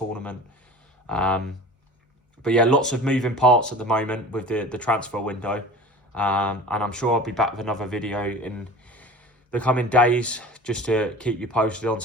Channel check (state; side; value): normal; both; correlation 0.40